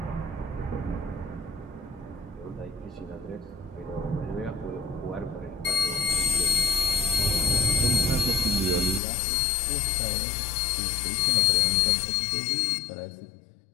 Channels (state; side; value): drops out; right; at 9.0 s